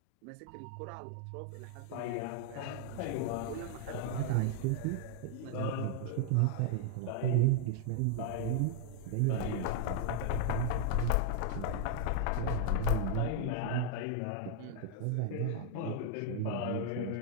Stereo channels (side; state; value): both; different; correlation 0.00